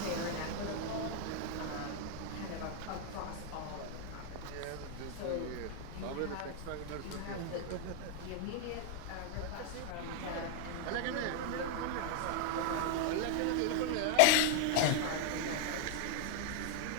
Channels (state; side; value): different; both; correlation 0.00